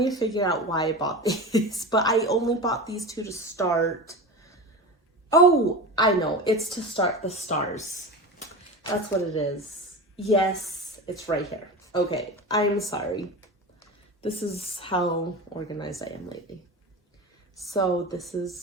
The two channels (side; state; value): both; normal; correlation 0.28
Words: to figure out why I bought these, but I only bought these two to start. Oh, I know. It's to start the stars. That's what it is. Yes, it's right here. Okay, I'm sorry. This is how organized I am lately. So this